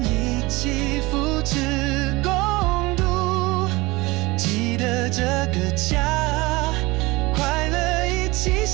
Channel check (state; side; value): quieter; left; 22.4 dB